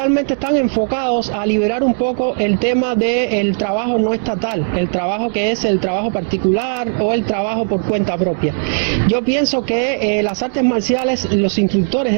están enfocados a liberar un poco el tema del trabajo no estatal, el trabajo que es el trabajo particular o el trabajo por cuenta propia. Yo pienso que las artes marciales, los instructores de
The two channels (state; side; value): silent; left; digital silence